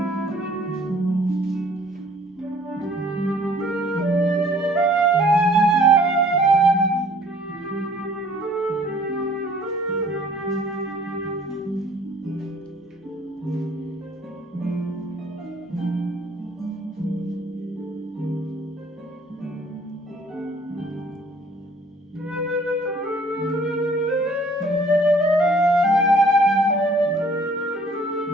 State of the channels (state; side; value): normal; both; correlation 0.56